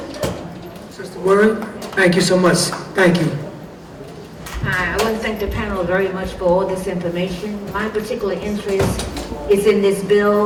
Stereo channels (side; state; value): both; identical; correlation 1.00